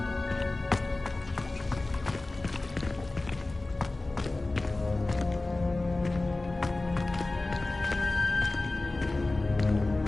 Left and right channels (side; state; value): right; quieter; 3.0 dB